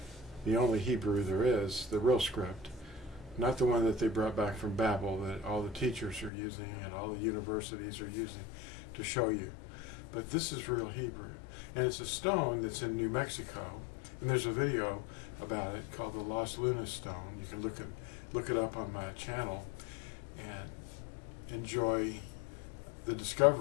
The only Hebrew there is, the real script. Not the one that they brought back from Babel that all the teachers are using and all the universities are using to show you. But this is real Hebrew. And it's a stone that's in New Mexico. And there's a video about it called the Lost Luna Stone. You can look it up on my channel and enjoy the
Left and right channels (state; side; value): drops out; right; at 6.3 s